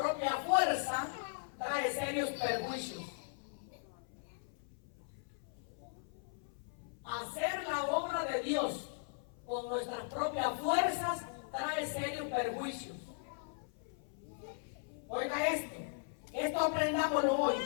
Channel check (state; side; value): silent; right; 52 dB below the other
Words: fuerza trae serios perjuicios. Hacer la obra de Dios con nuestras propias fuerzas trae serios perjuicios. Oiga esto aprendámoslo hoy.